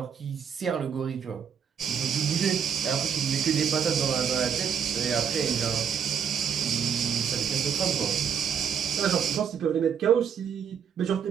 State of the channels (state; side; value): quieter; left; 7.6 dB